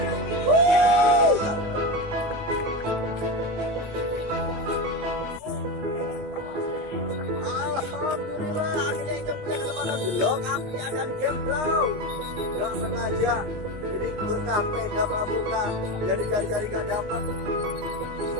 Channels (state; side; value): late; left; 19 ms